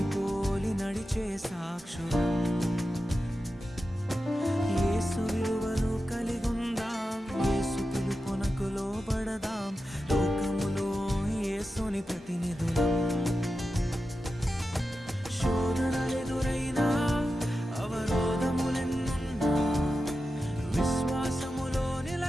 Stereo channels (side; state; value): both; normal; correlation 0.91